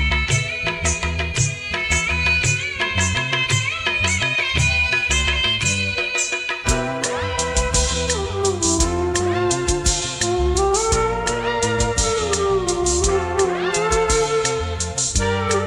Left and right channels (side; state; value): both; identical; correlation 1.00